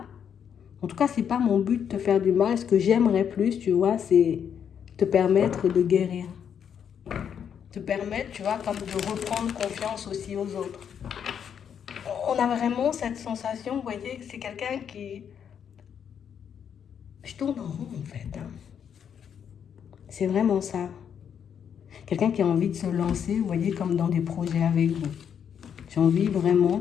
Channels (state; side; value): quieter; right; 8.1 dB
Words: En tout cas, c'est pas mon but de te faire du mal. Ce que j'aimerais plus, tu vois, c'est te permettre de guérir. Te permettre, tu vois, comme de reprendre confiance aussi aux autres. On a vraiment cette sensation, vous voyez, que c'est quelqu'un qui... Je tourne en rond en fait. Hein. C'est vraiment ça. Quelqu'un qui a envie de se lancer, vous voyez, comme dans des projets avec vous. J'ai envie vraiment,